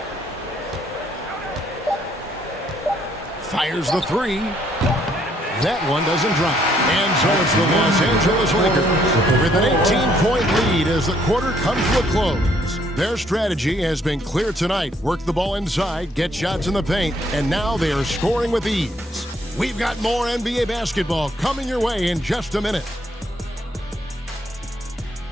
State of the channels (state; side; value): normal; both; correlation 0.68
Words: Fires the three. That one doesn't drop. And so it's the Los Angeles Lakers with an 18-point lead as the quarter comes to a close. Their strategy has been clear tonight. Work the ball inside, get shots in the paint, and now they are scoring with ease. We've got more NBA basketball coming your way in just a minute.